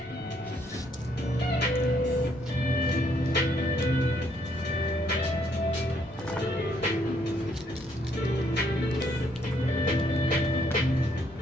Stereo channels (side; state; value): left; noise; rumble, 24 dB below the sound